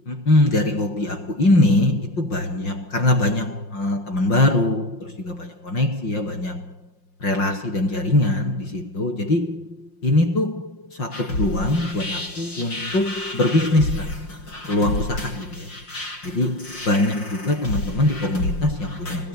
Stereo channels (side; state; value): right; late; 5.6 ms